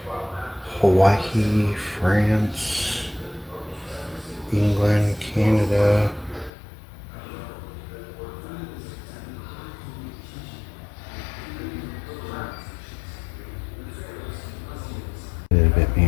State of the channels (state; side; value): drops out; right; at 6.5 s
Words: Hawaii, France, England, Canada. A little bit,